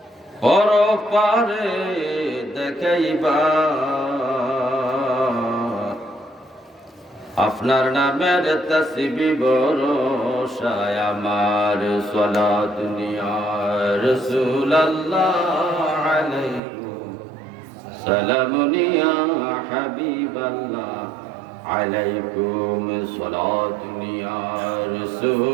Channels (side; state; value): left; drops out; at 16.6 s